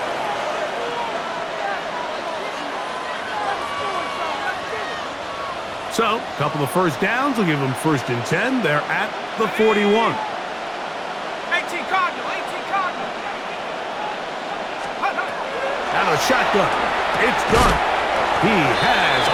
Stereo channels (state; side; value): identical; both; correlation 1.00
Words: So, a couple of first downs will give them 1st and 10. They're at the 41. 18 Cardinal, 18 Cardinal. Out of shotgun. It's done. He has